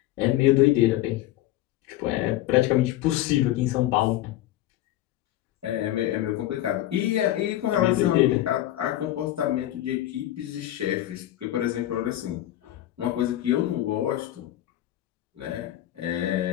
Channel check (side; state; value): right; quieter; 14.2 dB